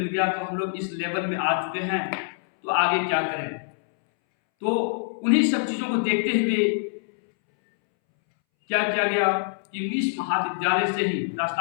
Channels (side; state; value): right; silent; 62 dB below the other